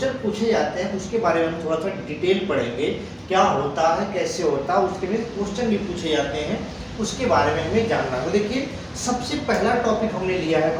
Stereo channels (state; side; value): identical; both; correlation 1.00